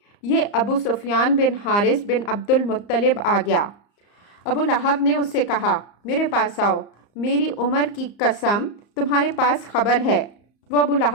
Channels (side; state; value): right; late; 34 ms